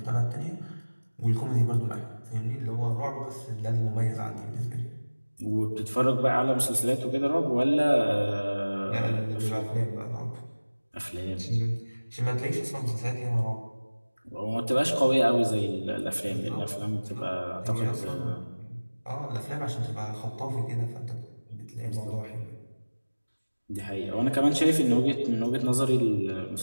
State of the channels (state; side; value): inverted; both; correlation -1.00